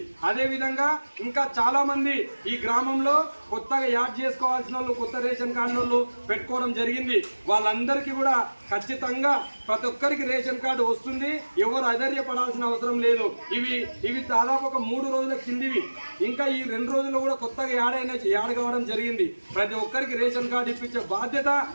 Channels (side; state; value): both; inverted; correlation -1.00